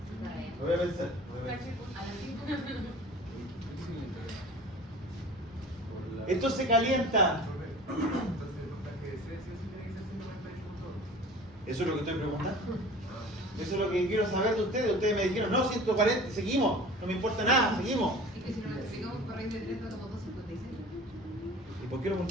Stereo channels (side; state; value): both; normal; correlation 0.42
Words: Lo voy a pensar. A las 5. Esto se calienta. Entonces el voltaje de C sí tiene que ser 148 Eso es lo que estoy preguntando. Eso es lo que quiero saber de ustedes. Ustedes me dijeron, no, 140, seguimos. No me importa nada, seguimos. Es que si no lo explicamos por raíz de 3 da como 2.56. ¿Y por qué lo